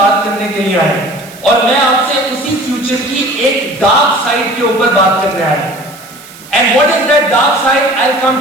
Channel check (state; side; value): noise; right; hiss, 20 dB below the sound